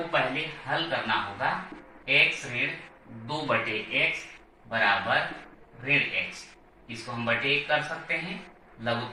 पहले हल करना होगा। x ऋण 2 बटे x बराबर ऋण x, इसको हम बटे 1 कर सकते हैं।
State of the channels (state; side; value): identical; both; correlation 1.00